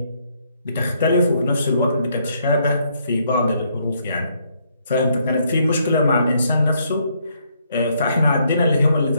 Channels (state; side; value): inverted; both; correlation -0.72